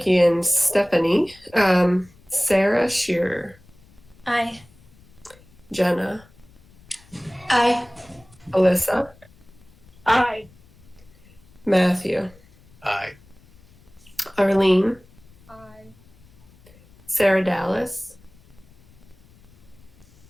and Stephanie. Sarah Shearer. Aye. Jenna. Aye. Alyssa. Aye. Matthew. Aye. Arlene. Aye. Sarah Dallas.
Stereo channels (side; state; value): left; noise; rumble, 27 dB below the sound